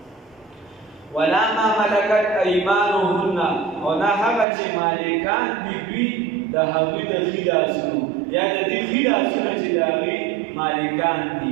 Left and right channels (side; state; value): left; drops out; at 4.5 s